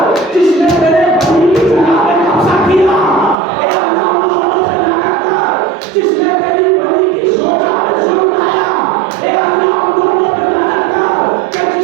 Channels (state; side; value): drops out; left; at 3.4 s